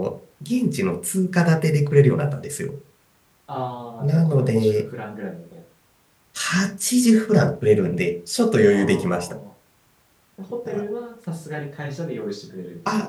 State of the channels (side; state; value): both; identical; correlation 1.00